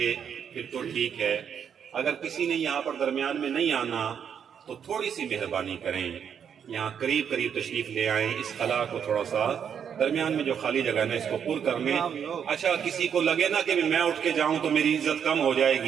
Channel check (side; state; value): left; quieter; 7.9 dB